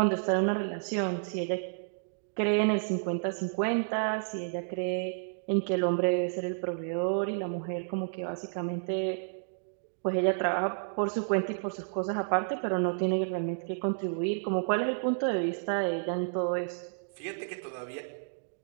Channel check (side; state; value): left; silent; digital silence